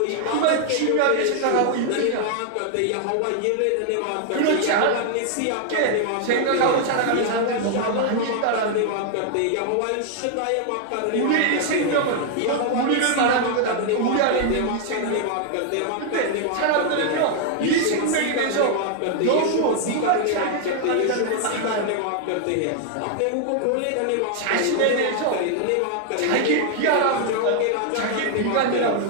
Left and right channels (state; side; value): different; both; correlation 0.00